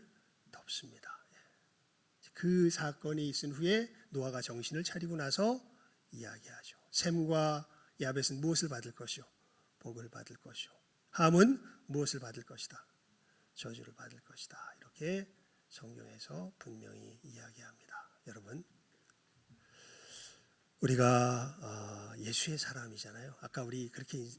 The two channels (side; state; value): both; identical; correlation 1.00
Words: 덮습니다. 그 사건이 있은 후에 노아가 정신을 차리고 나서 이야기하죠. 셈과 야벳은 무엇을 받을 것이요? 복을 받을 것이요. 함은 무엇을 받을 것이다? 저주를 받을 것이다. 이렇게 성경에서 분명히 이야기합니다. 여러분, 우리가 예수의 사람이잖아요. 아까 우리 그렇게